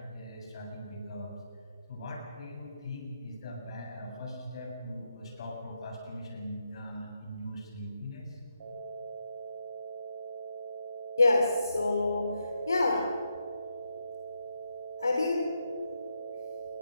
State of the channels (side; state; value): both; inverted; correlation -0.83